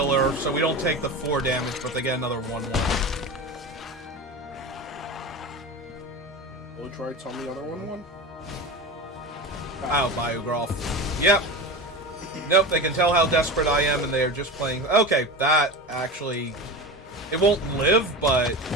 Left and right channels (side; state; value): both; normal; correlation 0.27